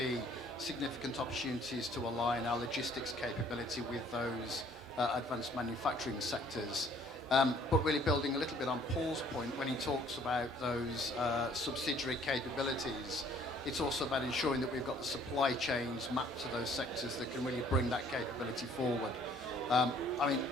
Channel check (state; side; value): normal; both; correlation 0.58